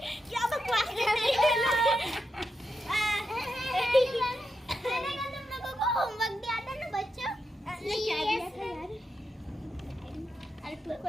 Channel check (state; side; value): normal; both; correlation 0.86